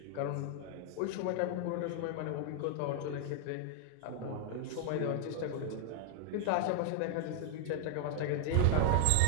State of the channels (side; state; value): both; different; correlation 0.00